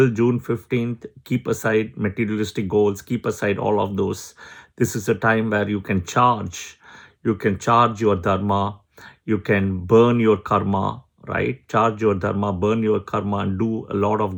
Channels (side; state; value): both; identical; correlation 1.00